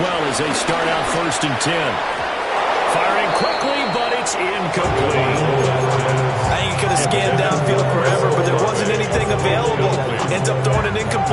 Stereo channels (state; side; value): identical; both; correlation 1.00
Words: as they start out first and 10. Firing quickly, but it's incomplete. I think he could have scanned downfield forever, but there wasn't anything available. Ends up throwing an